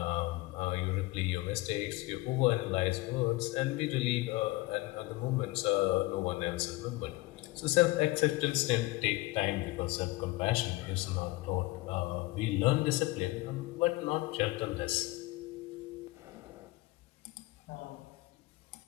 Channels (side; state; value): right; quieter; 20.8 dB